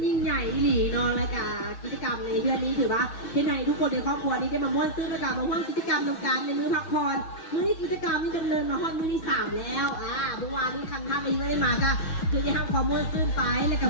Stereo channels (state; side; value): late; right; 6.3 ms